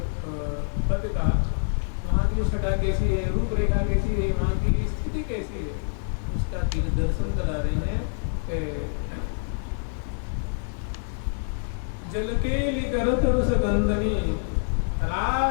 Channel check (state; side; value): silent; right; digital silence